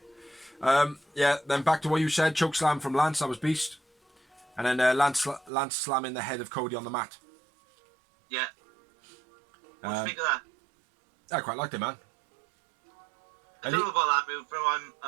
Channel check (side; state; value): left; drops out; at 5.5 s